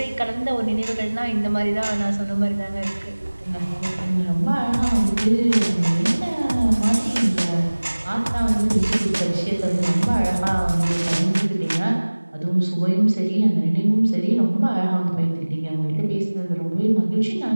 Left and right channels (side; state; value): both; inverted; correlation -1.00